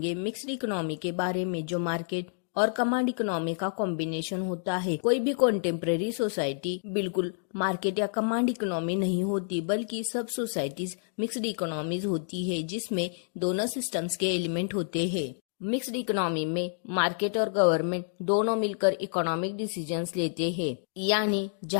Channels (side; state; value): right; silent; digital silence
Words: मिक्स्ड इकोनॉमी के बारे में, जो मार्केट और कमांड इकोनॉमी का कॉम्बिनेशन होता है। कोई भी कॉन्टेम्पररी सोसाइटी बिल्कुल मार्केट या कमांड इकोनॉमी नहीं होती, बल्कि सब सोसाइटीज मिक्स्ड इकोनॉमीज होती है, जिसमें दोनों सिस्टम्स के एलिमेंट होते हैं। मिक्स्ड इकोनॉमी में मार्केट और गवर्नमेंट दोनों मिलकर इकोनॉमिक डिसीजंस लेते हैं, यानी